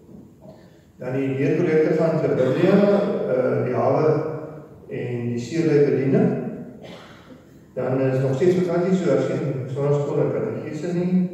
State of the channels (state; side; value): identical; both; correlation 1.00